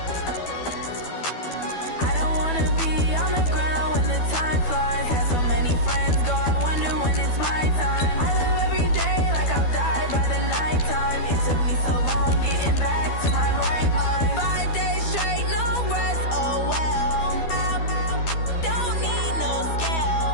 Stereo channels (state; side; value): late; right; 12 ms